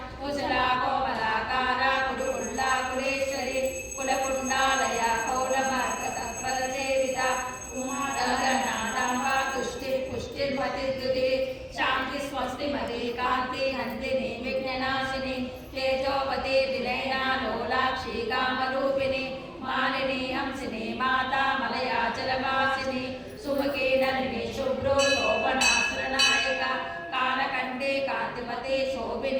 कुशला कोमलाकारा कुरुकुल्ला कुलेश्वरी कुलकुण्डालया कौलमार्गतत्परसेविता उमादगनादाम्बा तुष्टिः पुष्टिर्मतिर्द्युतिः शान्ति स्वस्तिमती कान्ति हन्तिनी विघ्ननाशिनी तेजोवती विनयना लोलाक्षी कामरूपिणी मालिनी हंसिनी माता मलयाचलवासिनी सुमुखी नलिनी शुभ्रो शोभनासुरनायका कालकण्ठे कान्तिमती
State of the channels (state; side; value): identical; both; correlation 1.00